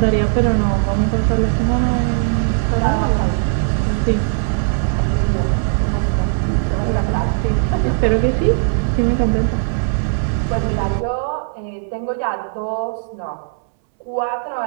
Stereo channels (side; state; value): left; silent; 63 dB below the other